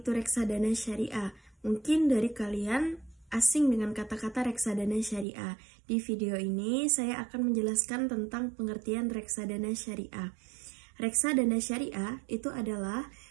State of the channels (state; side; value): drops out; left; at 5.2 s